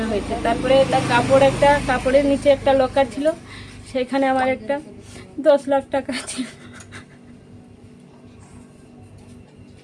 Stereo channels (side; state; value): both; identical; correlation 1.00